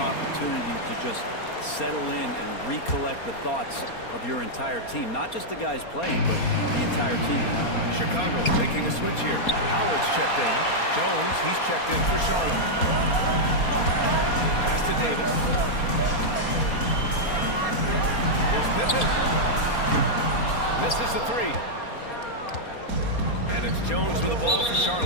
opportunity to just settle in and recollect the thoughts of your entire team. Not just the guys playing, but the entire team. Chicago making a switch here. Howard's checked in. Jones, he's checked in for Charlotte. Pass to Davis. Here's Pippen. Misses the three. And it's Jones with the ball for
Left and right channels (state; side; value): late; right; 4.3 ms